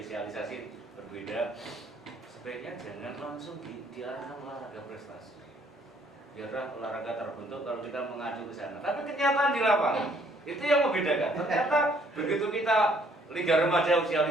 berbeda, sebaiknya jangan langsung diarahkan olahraga prestasi. Biarlah olahraga terbentuk kalau kita mengacu ke sana. Tapi kenyataan di lapangan itu yang membedakan. Ternyata begitu kita Liga Remaja usia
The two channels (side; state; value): both; normal; correlation 0.64